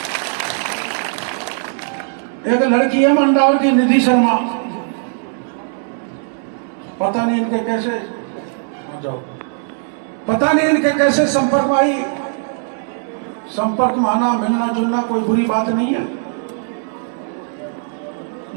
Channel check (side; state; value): left; silent; 61 dB below the other